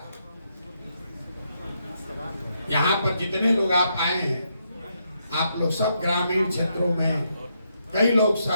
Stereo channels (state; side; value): inverted; both; correlation -0.78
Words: यहाँ पर जितने लोग आप आए हैं, आप लोग सब ग्रामीण क्षेत्रों में, कई लोग